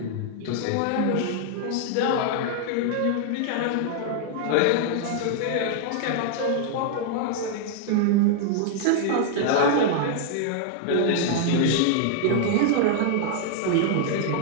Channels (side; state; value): both; different; correlation 0.00